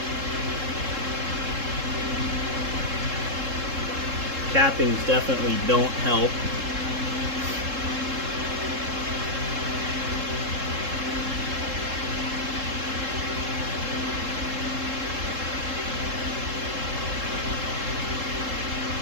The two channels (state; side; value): late; left; 3.7 ms